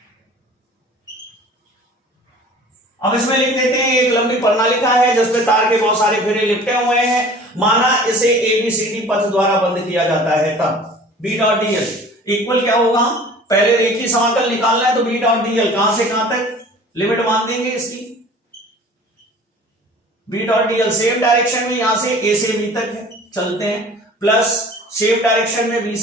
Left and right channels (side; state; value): both; normal; correlation 0.45